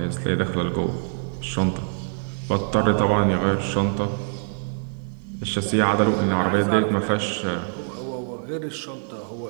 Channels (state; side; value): silent; left; digital silence